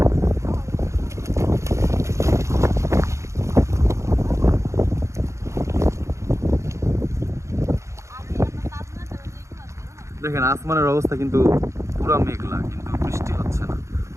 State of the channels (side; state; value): left; late; 0.14 ms